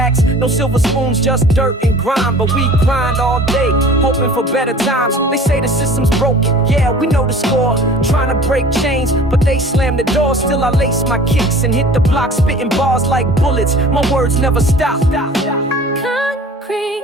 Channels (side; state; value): both; normal; correlation 0.45